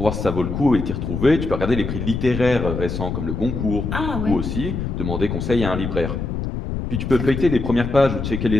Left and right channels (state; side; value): noise; left; rumble, 4 dB below the sound